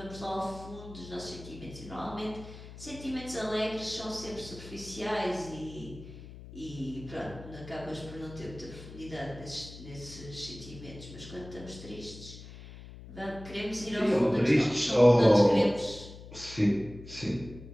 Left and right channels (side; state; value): left; noise; hum, 15 dB below the sound